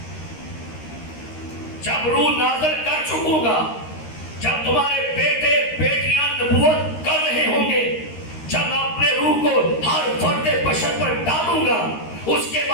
जब रूह नाज़िल कर चुकूंगा, जब तुम्हारे बेटे बेटियां नबूवत कर रहे होंगे, जब मैं अपने रूह को हर फर्दे बशर पर डालूंगा, उसके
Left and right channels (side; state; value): right; late; 13 ms